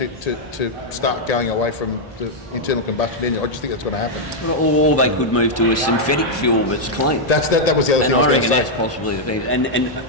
start going away from the internal combustion engine. I just think that's going to happen. Or they could move to a synthetic fuel that's clean. That was the other And thing I was I going reckon to that's say. possibly the thing. And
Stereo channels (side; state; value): both; normal; correlation -0.02